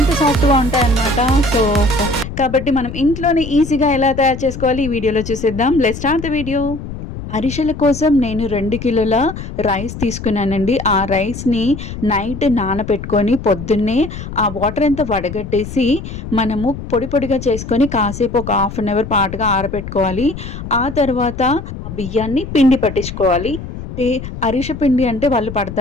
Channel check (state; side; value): noise; left; rumble, 9 dB below the sound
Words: సాఫ్ట్‌గా ఉంటాయన్నమాట. సో, కాబట్టి మనం ఇంట్లోనే ఈజీగా ఎలా తయారు చేసుకోవాలి ఈ వీడియోలో చూసేద్దాం. Let's start the video. అరిసెల కోసం నేను 2 కిలోల రైస్ తీసుకున్నానండి. ఆ రైస్‌ని నైట్ నానబెట్టుకొని పొద్దున్నే ఆ వాటర్ అంతా వడగట్టేసి మనము పొడి పొడిగా చేసుకొని కాసేపు ఒక హాఫ్ అన్ అవర్ పాటుగా ఆరబెట్టుకోవాలి. ఆ తర్వాత ఆ బియ్యాన్ని పిండి పట్టించుకోవాలి. అంటే అరిసె పిండి అంటే వాళ్ళు